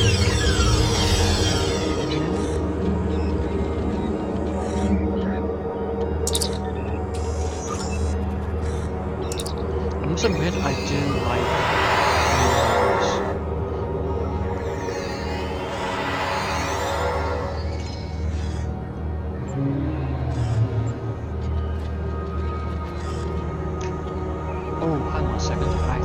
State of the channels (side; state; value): both; identical; correlation 1.00